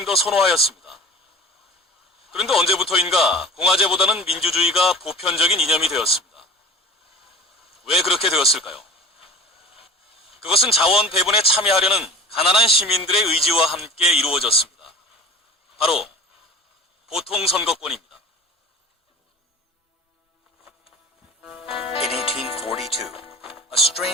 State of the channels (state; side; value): normal; both; correlation 0.37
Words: 더 선호하였습니다. 그런데 언제부터인가 공화제보다는 민주주의가 보편적인 이념이 되었습니다. 왜 그렇게 되었을까요? 그것은 자원 배분에 참여하려는 가난한 시민들의 의지와 함께 이루어졌습니다. 바로 보통선거권입니다. In 1842, a